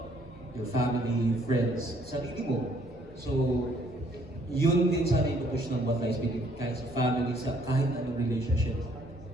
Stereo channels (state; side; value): normal; both; correlation 0.64